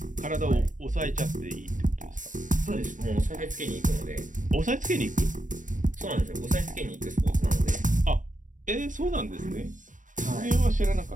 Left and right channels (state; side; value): late; left; 0.37 ms